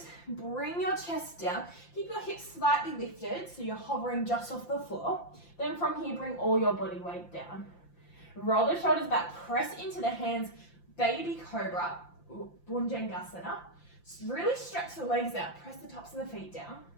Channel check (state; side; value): late; right; 5.8 ms